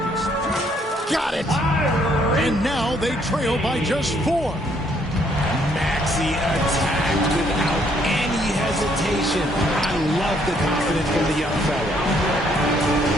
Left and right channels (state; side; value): normal; both; correlation 0.68